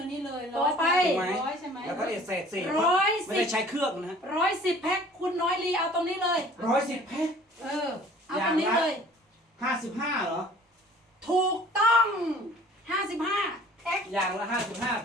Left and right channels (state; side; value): normal; both; correlation 0.49